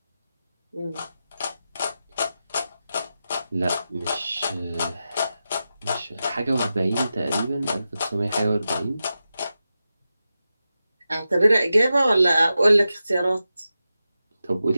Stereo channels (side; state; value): both; inverted; correlation -0.91